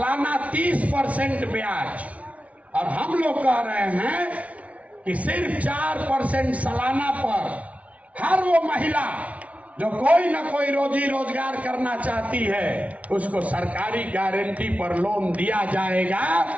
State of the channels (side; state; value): left; late; 0.066 ms